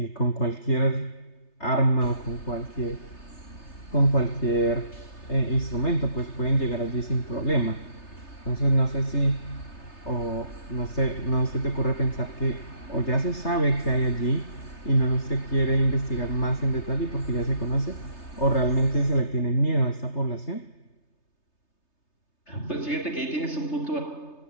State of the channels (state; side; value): late; right; 3.3 ms